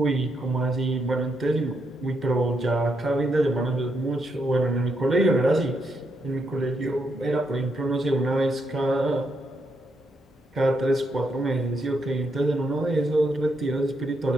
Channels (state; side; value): normal; both; correlation 0.79